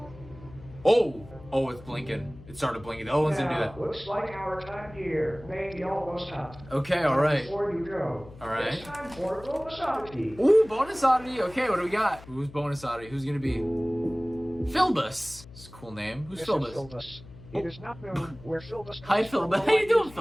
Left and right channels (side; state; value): left; noise; hum, 19 dB below the sound